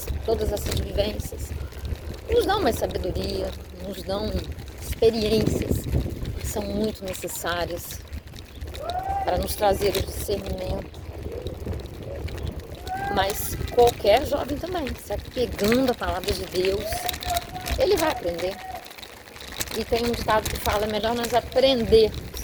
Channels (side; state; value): both; identical; correlation 1.00